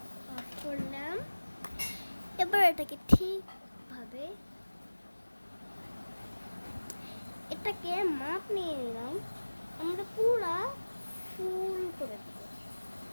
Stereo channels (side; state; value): both; inverted; correlation -1.00